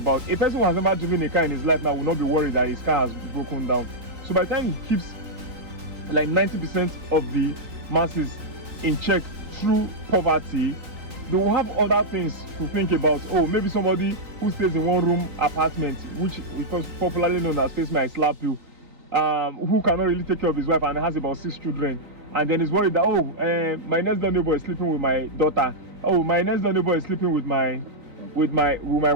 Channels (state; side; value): late; left; 3.9 ms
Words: A person who has never driven a car in his life now will not be worried that his car has broken down. So by the time he keeps like 90% of the masses in check through poverty, they will have other things to think about. Oh, maybe somebody who stays in one room apartment, which is popularly known as face me I slap you, who cannot really take care of his wife and has about 6 children, and then is worried that my next door neighbor is sleeping with my daughter, my next door neighbor is sleeping with my